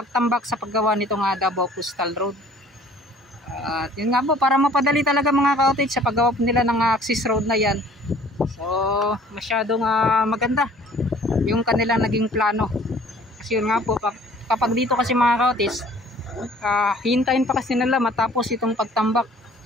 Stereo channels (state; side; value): normal; both; correlation 0.53